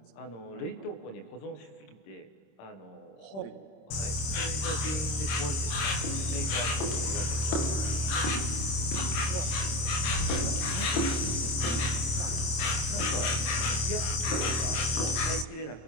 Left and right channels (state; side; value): late; right; 26 ms